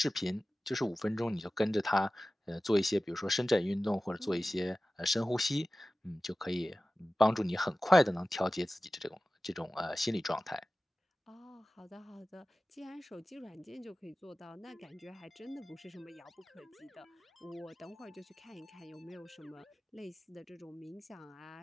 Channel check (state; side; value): normal; both; correlation 0.96